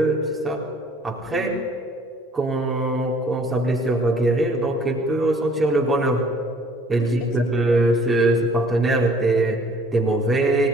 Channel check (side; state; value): both; normal; correlation 0.57